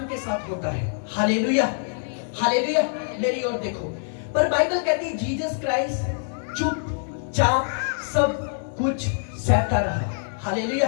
के साथ होता है। Hallelujah, hallelujah. मेरी ओर देखो। पर बाइबल कहती जीसस क्राइस्ट चुपचाप सब कुछ सहता रहा। हालेलुया।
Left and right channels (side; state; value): right; silent; digital silence